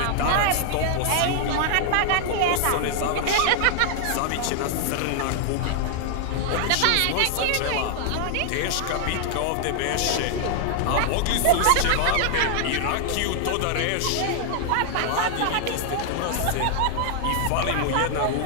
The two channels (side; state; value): both; different; correlation 0.00